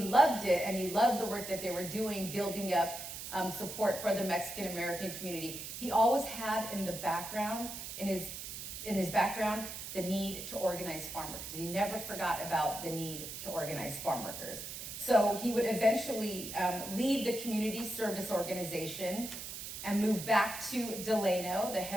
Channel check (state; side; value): noise; right; hiss, 8 dB below the sound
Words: loved it, and he loved the work that they were doing, building up support for the Mexican American community, he always had in the background, in his background, the need to organize farm workers. He never forgot about the need to organize farm workers. So he would eventually leave the Community Service Organization and move back to Delano, a